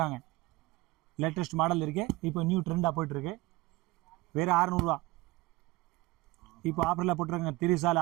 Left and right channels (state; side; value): quieter; left; 20.8 dB